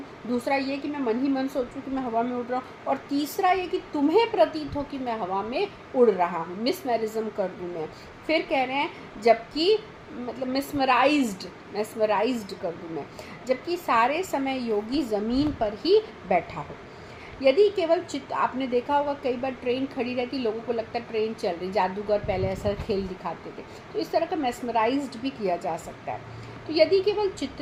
दूसरा ये कि मैं मन ही मन सोचूं कि मैं हवा में उड़ रहा हूँ, और तीसरा ये कि तुम्हें प्रतीत हो कि मैं हवा में उड़ रहा हूँ, मिसमैरिज्म कर दूँ मैं। फिर कह रहे हैं जबकि मतलब मेस्मराइज्ड कर दूँ मैं, जबकि सारे समय योगी ज़मीन पर ही बैठा हो। यदि केवल चित्त, आपने देखा होगा कई बार ट्रेन खड़ी रहती, लोगों को लगता है ट्रेन चल रही, जादूगर पहले ऐसा खेल दिखाते थे, तो इस तरह का मेस्मराइज्ड भी किया जा सकता है। तो यदि केवल चित्त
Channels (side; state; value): both; identical; correlation 1.00